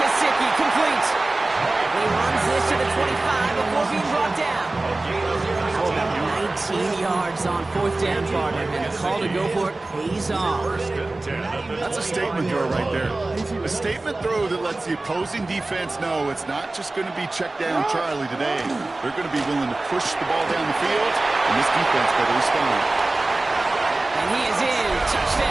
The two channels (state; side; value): quieter; left; 3.0 dB